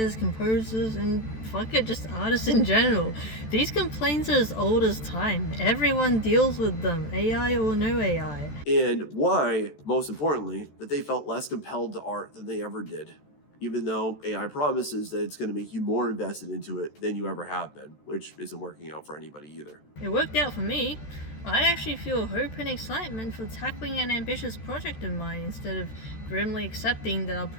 composers, and fuck it, just artists in general. These complaints are as old as time. Everyone deals with them, AI or no AI. And why, most importantly, that they felt less compelled to art than they ever did, even though AI promises that it's going to make you more invested into it than you ever have been, which isn't working out for anybody either. It worked out for me. I actually feel hope and excitement for tackling an ambitious project of mine instead of grimly accepting that I'll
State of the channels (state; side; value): late; right; 14 ms